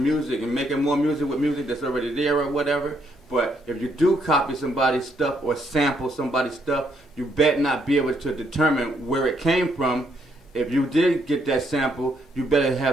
and making more music with music that's already there or whatever. But if you do copy somebody's stuff or sample somebody's stuff, you better not be able to determine where it came from. If you did get that sample, you better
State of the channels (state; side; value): normal; both; correlation 0.73